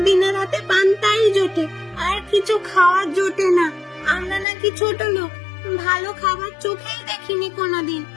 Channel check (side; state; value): right; drops out; at 4.5 s